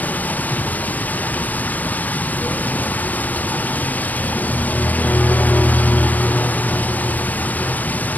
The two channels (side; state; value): right; late; 0.079 ms